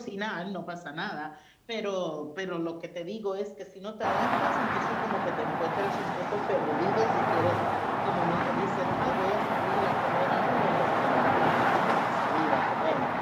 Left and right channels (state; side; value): identical; both; correlation 1.00